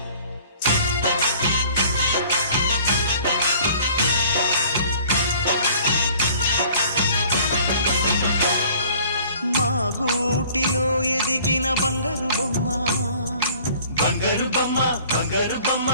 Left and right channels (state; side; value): inverted; both; correlation -0.51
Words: మా గూటిలో ఎదిగిన బంగారు బొమ్మ, బంగారు బొమ్మ, బంగారు బొమ్మ.